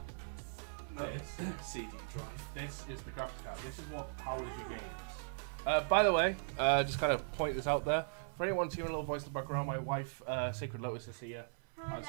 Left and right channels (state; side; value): silent; left; 52 dB below the other